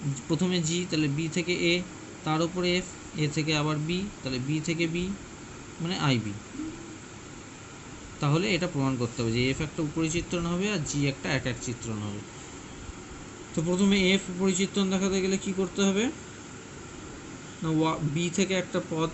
প্রথমে জি, তাহলে বি থেকে এ, তার উপরে এফ, এ থেকে আবার বি, তাহলে বি থেকে বি মানে আই বি। তাহলে এটা প্রমাণ করতে হবে যে এফ একটা উপরি চিত্রণ হবে আর জি একটা এক এক চিত্রণ হবে। তো প্রথমে এফ উপরি চিত্রণ দেখাতে গেলে কি করতে হবে না বি থেকে একটা পদ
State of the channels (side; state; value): both; identical; correlation 1.00